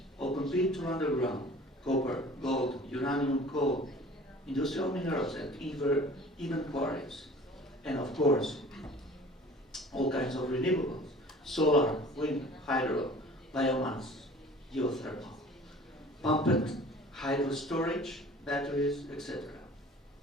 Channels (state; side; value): normal; both; correlation 0.46